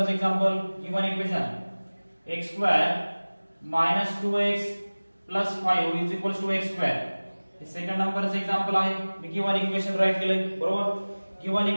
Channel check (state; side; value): inverted; both; correlation -1.00